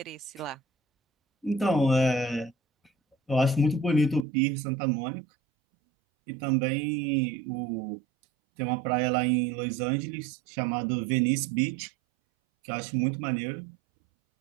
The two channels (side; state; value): left; drops out; at 4.2 s